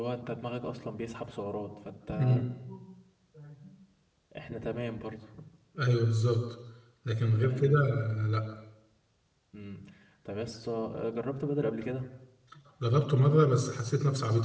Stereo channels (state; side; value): identical; both; correlation 1.00